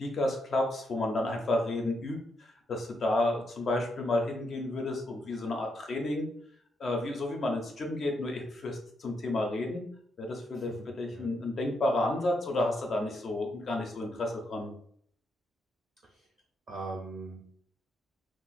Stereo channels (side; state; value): both; normal; correlation 0.80